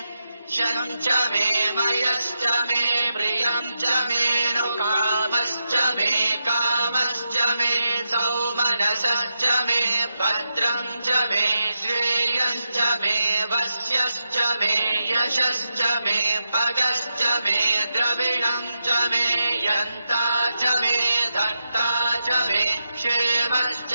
शम् च मे मयश्च मे प्रियम् च मे नु कामश्च मे कामश्च मे सौमनसश्च मे भद्रम् च मे श्रेयश्च मे वस्यश्च मे यशश्च मे भगश्च मे द्रविणम् च मे यन्ता च मे धर्ता च मे क्षेमश्च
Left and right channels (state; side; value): inverted; both; correlation -0.86